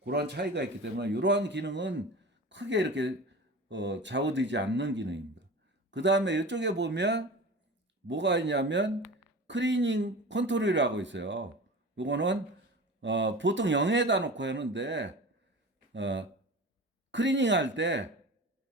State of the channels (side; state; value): both; normal; correlation 0.34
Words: 그런 차이가 있기 때문에 이러한 기능은 크게 이렇게 좌우되지 않는 기능입니다. 그 다음에 이쪽에 보면 뭐가 있냐면 클리닝 컨트롤이라고 있어요. 요거는 보통 0에다 놓고 하는데 클리닝 할 때